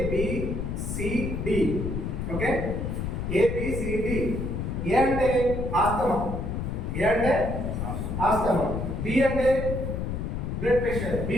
ఓకే, ABCD. ఏ అంటే ఆస్తమా, ఏ అంటే ఆస్తమా, బి అంటే blood pressure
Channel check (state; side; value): noise; left; rumble, 3 dB below the sound